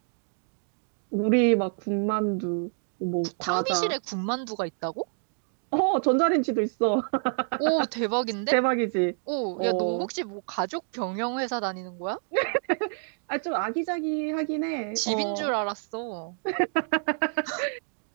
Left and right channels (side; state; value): left; silent; digital silence